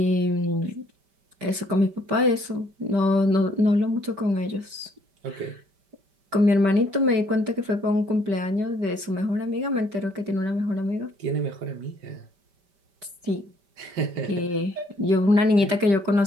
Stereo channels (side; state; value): left; late; 5.1 ms